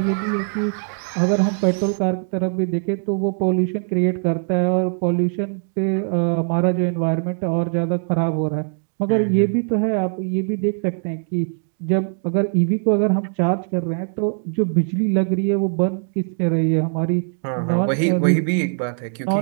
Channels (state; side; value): silent; left; 60 dB below the other